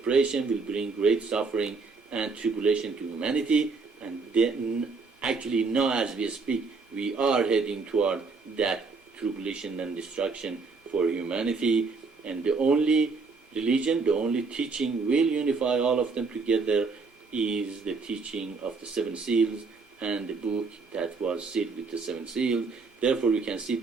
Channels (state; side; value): quieter; left; 4.4 dB